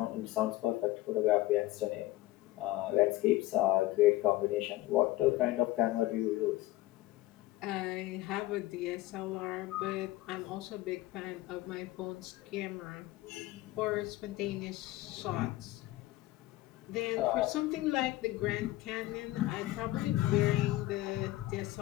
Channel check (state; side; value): quieter; right; 17.0 dB